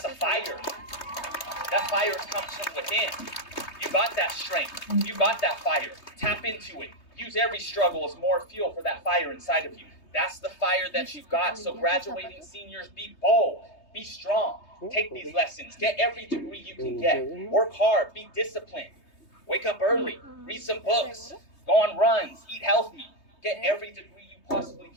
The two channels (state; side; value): late; right; 3.2 ms